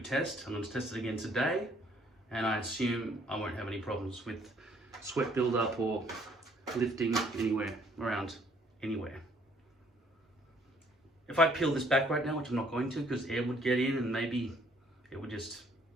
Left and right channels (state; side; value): normal; both; correlation 0.63